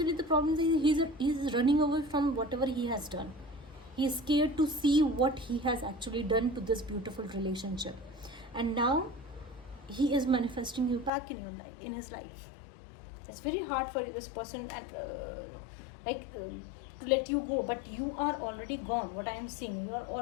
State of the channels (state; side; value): drops out; right; at 11.1 s